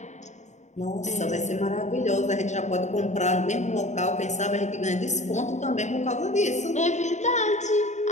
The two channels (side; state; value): right; late; 0.34 ms